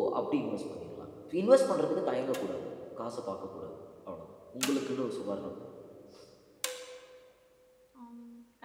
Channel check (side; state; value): both; identical; correlation 1.00